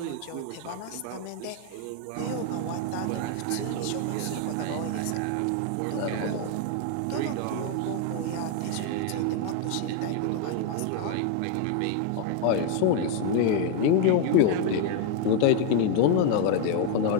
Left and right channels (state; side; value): different; both; correlation 0.01